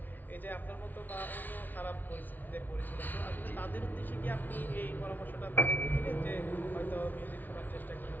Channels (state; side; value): late; right; 0.084 ms